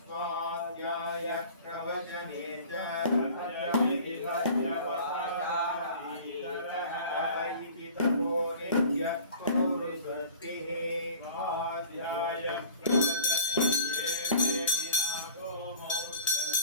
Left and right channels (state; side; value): inverted; both; correlation -0.44